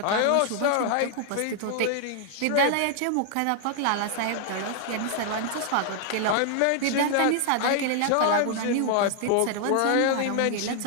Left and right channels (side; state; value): both; different; correlation 0.00